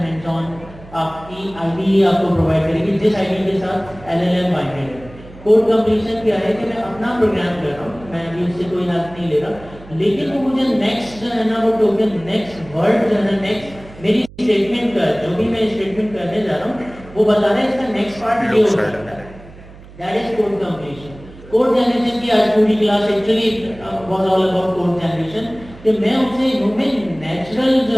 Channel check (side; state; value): right; noise; hum, 19 dB below the sound